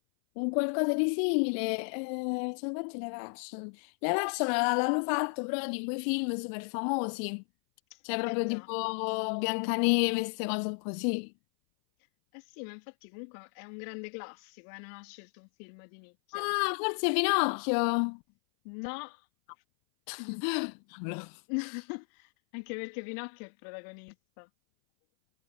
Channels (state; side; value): silent; right; 56 dB below the other